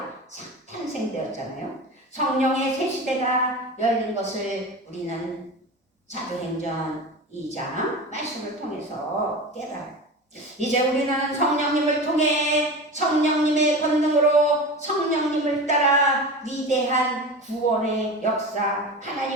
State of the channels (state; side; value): normal; both; correlation 0.30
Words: 탄생되었잖아요. 성령의 새 시대가 열린 것을 우리는 사도행전 2장 말씀을 통해서 깨달아요. 이제 우리는 성령님을 통해 성령님의 권능으로 성령님을 따라 위대한 구원의 역사,